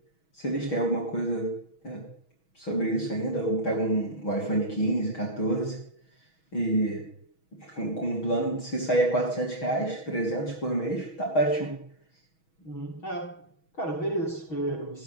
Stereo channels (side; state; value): right; late; 6.3 ms